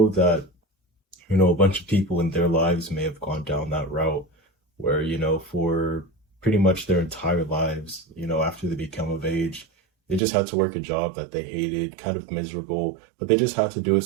that, a bunch of people in their lives may have gone down that route where, for pretty much their entire lives, after they become of age, they just had to work a job that they hated, kind of miserable, but they just had to do it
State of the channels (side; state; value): left; drops out; at 10.2 s